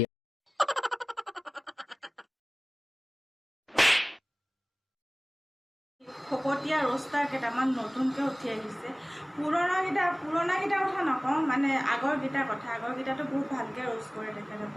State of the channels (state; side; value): normal; both; correlation 0.98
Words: ফকতীয়া ৰষ্টাৰ কেইটামান নতুনকৈ উঠি আহিছে। পুৰণাকেইটা কথা নকওঁ, মানে আগৰকেইটাৰ বহুত ভালকৈ ৰ'ষ্ট কৰে